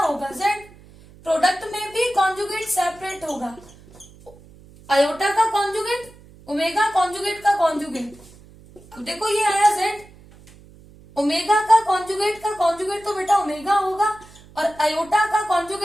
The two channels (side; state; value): right; noise; hum, 23 dB below the sound